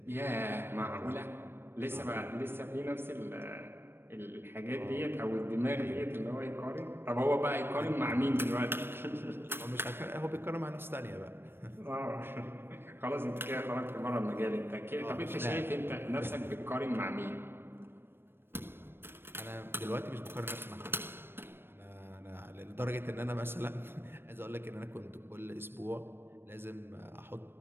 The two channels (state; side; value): late; left; 0.10 ms